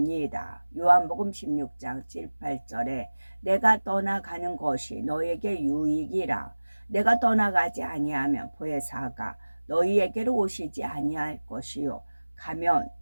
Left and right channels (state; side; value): inverted; both; correlation -1.00